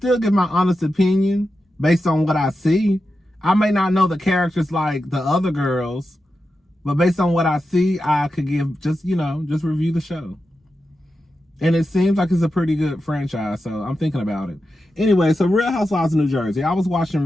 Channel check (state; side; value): normal; both; correlation 0.90